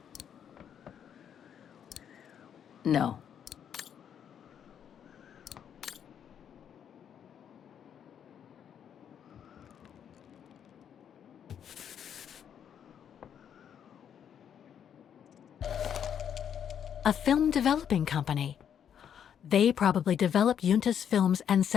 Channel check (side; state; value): right; quieter; 8.7 dB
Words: No. A film developing company. They probably developed Yunta's films and